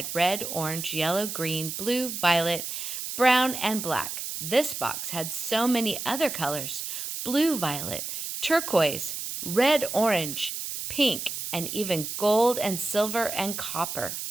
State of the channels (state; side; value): noise; right; hiss, 6 dB below the sound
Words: red, orange, yellow, green, blue, violet, brown, and black. This box had so many other colors: blue, violet, turquoise, red, orange, pink, and even gold and silver and copper.